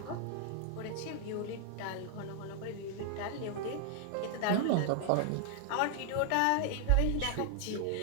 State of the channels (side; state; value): both; different; correlation 0.00